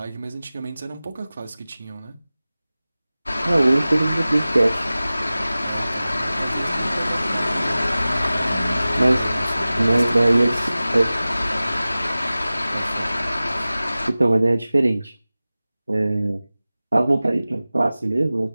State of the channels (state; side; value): inverted; both; correlation -0.97